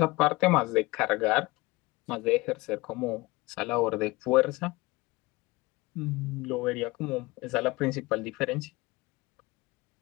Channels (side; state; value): right; quieter; 22.2 dB